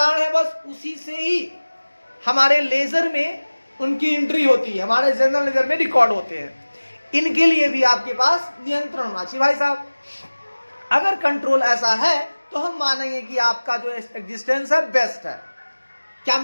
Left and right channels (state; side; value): inverted; both; correlation -1.00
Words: है बस उसी से ही हमारे लेजर में उनकी एंट्री होती है, हमारे जनरल लेजर में रिकॉर्ड होते हैं। इनके लिए भी आपके पास नियंत्रण होना चाहिए भाई साहब। अगर कंट्रोल ऐसा है तो हम मानेंगे कि आपका जो एग्जिस्टेंस है बेस्ट है। क्या